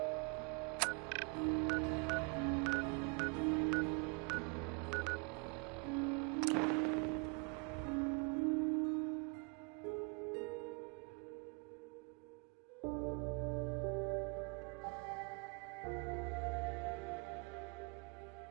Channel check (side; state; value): left; quieter; 34.4 dB